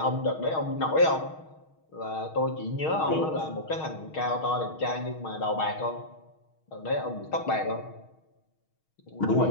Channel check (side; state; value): right; late; 6.4 ms